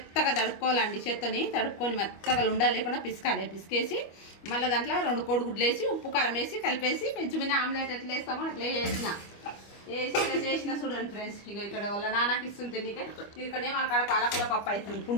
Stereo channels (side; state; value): right; late; 25 ms